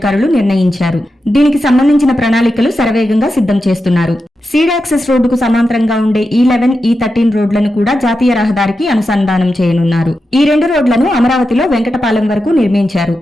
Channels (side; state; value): both; normal; correlation 0.89